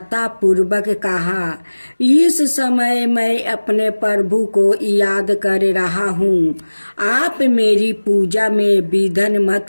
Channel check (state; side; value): inverted; both; correlation -1.00